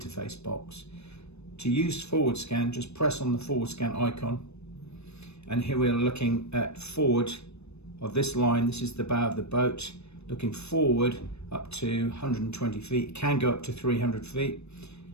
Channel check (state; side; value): late; right; 0.80 ms